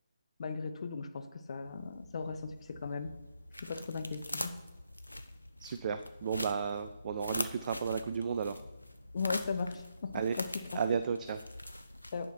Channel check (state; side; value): inverted; both; correlation -0.77